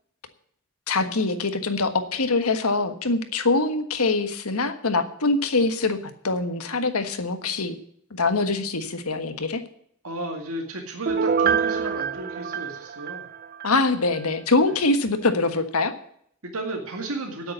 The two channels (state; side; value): normal; both; correlation -0.13